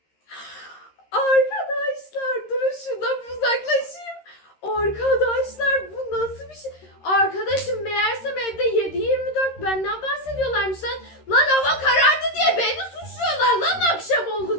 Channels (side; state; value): right; late; 13 ms